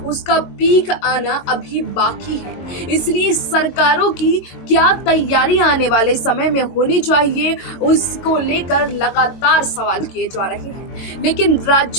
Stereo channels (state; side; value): late; right; 22 ms